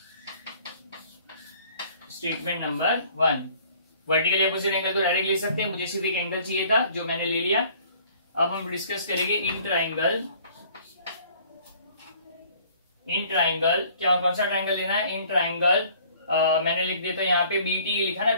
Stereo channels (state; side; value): inverted; both; correlation -0.55